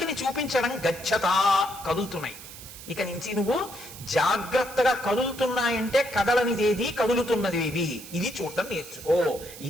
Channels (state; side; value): noise; right; hiss, 15 dB below the sound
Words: చూపించడం, గచ్చతా కదులుతున్నాయి, ఇక నుంచి నువ్వు జాగ్రత్తగా కదులుతున్నాయంటే కదలనిదేది కదులుతున్నదేది ఇది చూడటం నేర్చుకో.